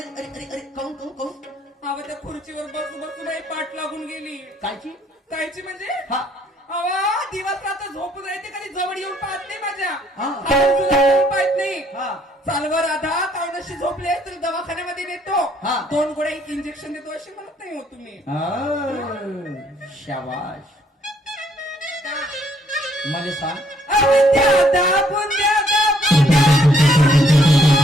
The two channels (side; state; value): both; normal; correlation 0.66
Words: अरे अरे अरे, काऊन? अव त्या खुर्चीवर बसून पाठ लागून गेली. कायची? कायची म्हणजे हा. अवा दिवस झोप जायचे कधी जवळ येऊन पाहत नाही माझ्या हा. हात तुला येऊन पाहत नाही हा चालवा राधा कावनशी झोपले तर दवाखान्यामध्ये नेतो हा. 2 गोळ्या एक इंजेक्शन देतो अशी म्हणत नाही हो तुम्ही शाबाश मला सांग बुंद्या दा, बुंद्या दा, बुंद्या दा.